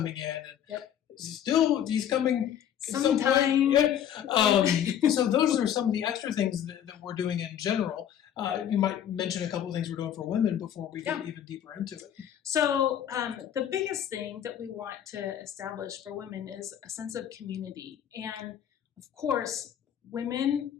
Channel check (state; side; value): quieter; right; 9.9 dB